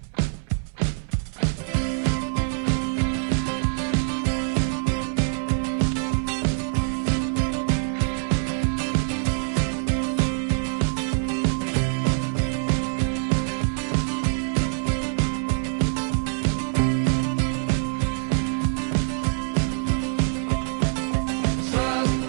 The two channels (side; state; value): left; silent; digital silence